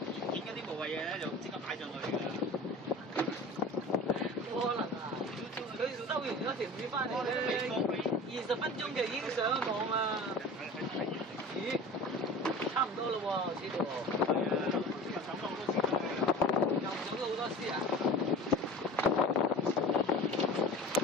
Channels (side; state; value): both; normal; correlation 0.39